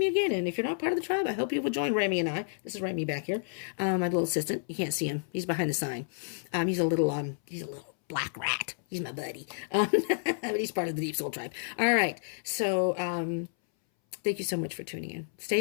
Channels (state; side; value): silent; right; 58 dB below the other